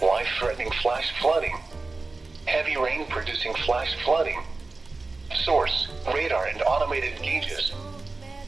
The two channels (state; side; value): quieter; left; 3.6 dB